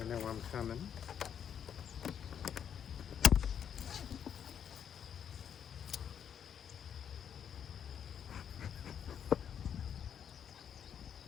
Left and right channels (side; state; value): right; quieter; 8.4 dB